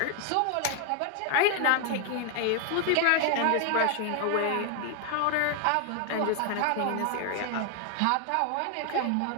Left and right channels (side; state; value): both; different; correlation 0.00